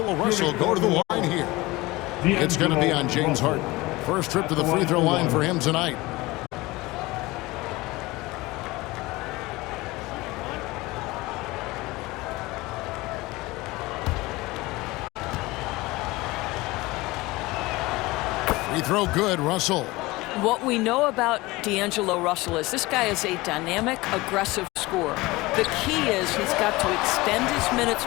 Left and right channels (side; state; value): right; quieter; 21.0 dB